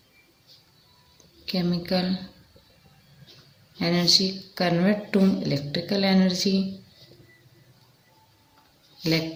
energy convert to electrical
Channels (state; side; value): identical; both; correlation 1.00